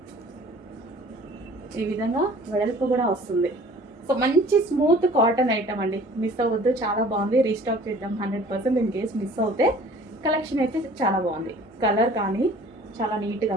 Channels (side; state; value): both; normal; correlation 0.49